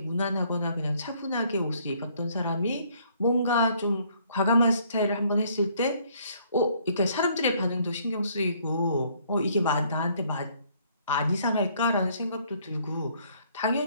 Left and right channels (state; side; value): inverted; both; correlation -0.64